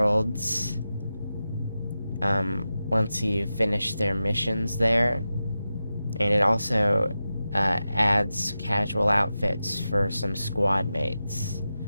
once you finish their missions there. And it also adds casual outfits for some squad mates.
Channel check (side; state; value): both; inverted; correlation -0.92